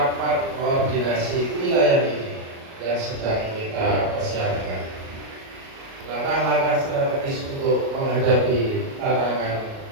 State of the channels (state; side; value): late; left; 37 ms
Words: koordinasi wilayah ini yang sedang kita persiapkan, langkah-langkah strategis untuk menghadapi tantangan